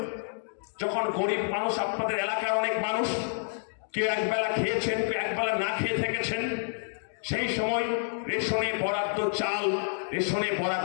যখন গরিব মানুষ, আপনাদের এলাকার অনেক মানুষ, কেউ একবেলা খেয়েছেন, কেউ একবেলা না খেয়ে থেকেছেন, সেই সময় রেশনে বরাদ্দ চাল, রেশনে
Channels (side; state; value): right; silent; digital silence